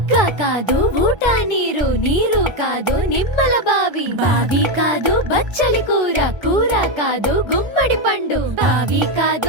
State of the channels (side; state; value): left; late; 1.3 ms